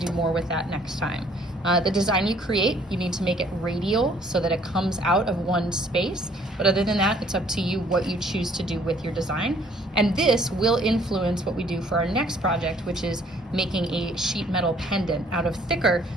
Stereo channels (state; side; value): normal; both; correlation 0.60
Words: do more with that next time. The design you create, you need to make it radial so that it comes out of one space. But other than that, it's up to you what you choose to do with your design. And this will influence what we do for our next project, which is making a sheet metal pendant out of thicker